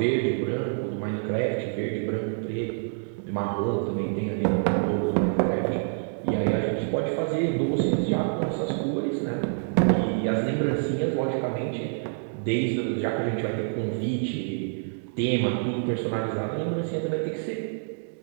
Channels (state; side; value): silent; left; digital silence